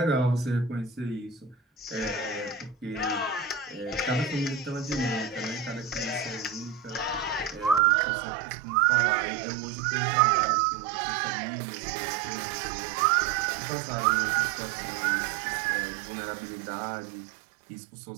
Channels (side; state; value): left; drops out; at 7.8 s